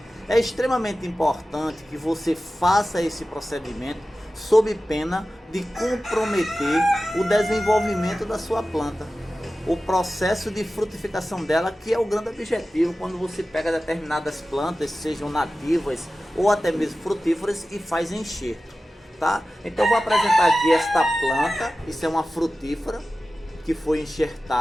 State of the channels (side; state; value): both; normal; correlation 0.95